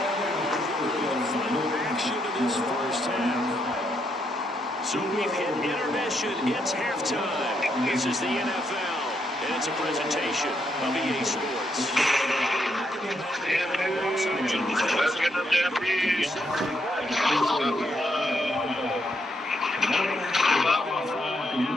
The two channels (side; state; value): both; normal; correlation 0.77